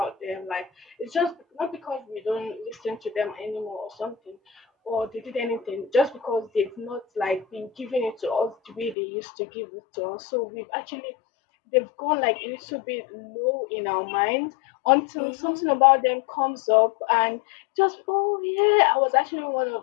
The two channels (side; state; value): right; drops out; at 9.0 s